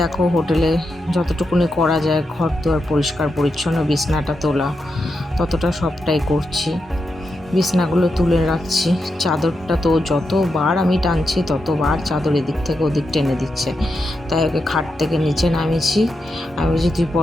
দেখো হোটেলে যতটুকুনি করা যায়, ঘর দুয়ার পরিষ্কার পরিচ্ছন্ন, বিছনাটা তোলা, ততটা সবটাই করছি। বিছনাগুলো তুলে রাখছি, চাদরটা তো যতবার আমি টানছি ততবার চাদর এদিক থেকে ওদিক টেনে দিচ্ছে। তাই ওকে খাট থেকে নিচে নামিয়েছি। আমি বলছি তুই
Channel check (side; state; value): both; normal; correlation 0.86